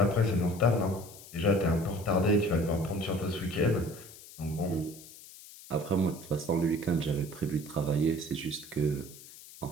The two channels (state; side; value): noise; left; hiss, 18 dB below the sound